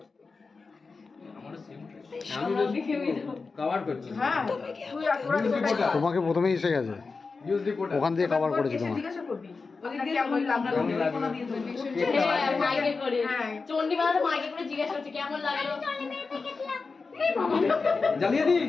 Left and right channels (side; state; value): right; quieter; 4.4 dB